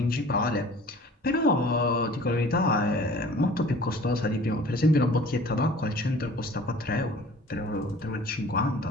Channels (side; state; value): both; normal; correlation 0.47